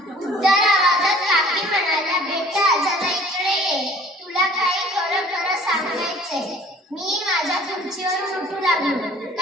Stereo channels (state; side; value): normal; both; correlation 0.52